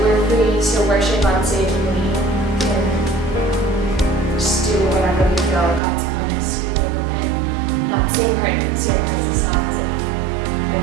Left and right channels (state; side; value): drops out; left; at 5.8 s